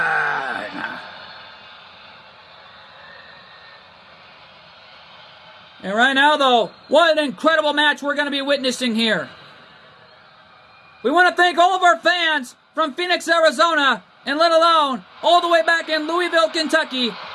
And right now, though, what an incredible match we're going to be witnessing here. We want to thank all of our fans from Phoenix, Arizona, and let alone all the way back in Louisville, Kentucky,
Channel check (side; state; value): both; identical; correlation 1.00